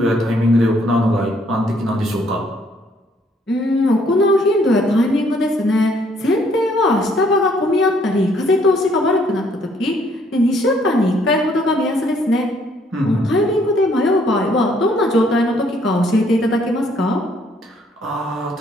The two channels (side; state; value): both; normal; correlation 0.66